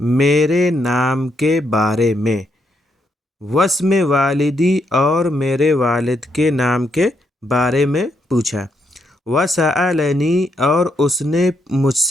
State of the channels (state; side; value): normal; both; correlation 0.77